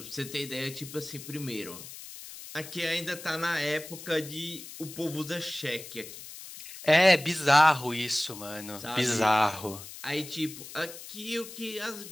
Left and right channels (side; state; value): left; noise; hiss, 13 dB below the sound